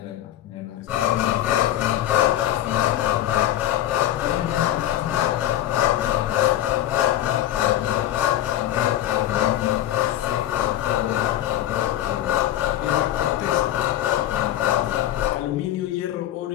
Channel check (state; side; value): quieter; right; 12.9 dB